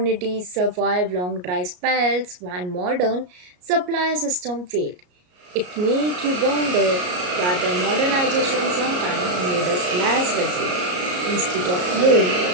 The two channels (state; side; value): late; left; 33 ms